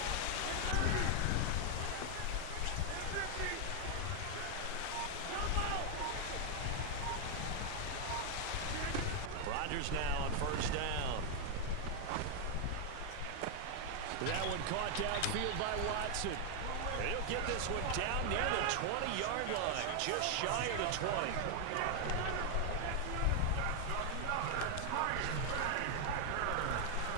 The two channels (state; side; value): different; both; correlation 0.00